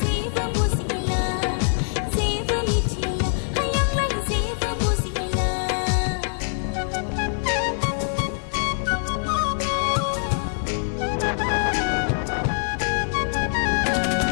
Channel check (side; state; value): right; silent; digital silence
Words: जेबो बुजिला जेबो मिथिला हायांलाय जेबो बुजिला